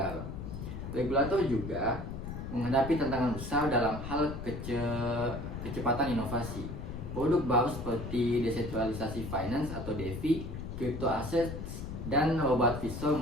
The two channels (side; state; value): left; noise; rumble, 7 dB below the sound